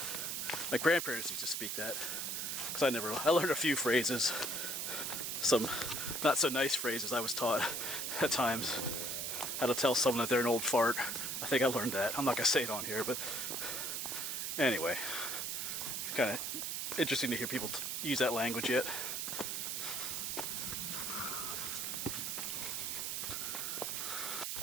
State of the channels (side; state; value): right; noise; hiss, 2 dB below the sound